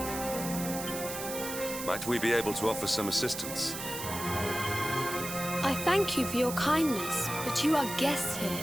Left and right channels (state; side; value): noise; right; hiss, 7 dB below the sound